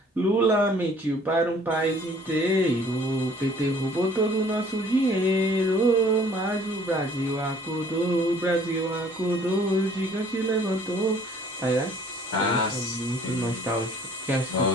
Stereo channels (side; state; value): both; normal; correlation 0.56